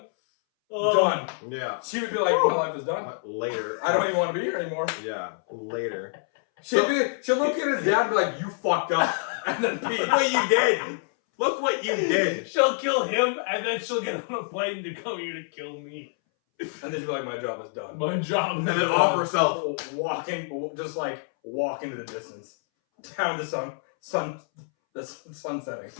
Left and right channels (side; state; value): right; silent; 60 dB below the other